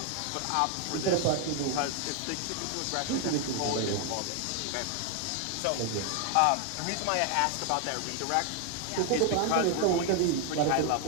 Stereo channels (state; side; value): different; both; correlation 0.01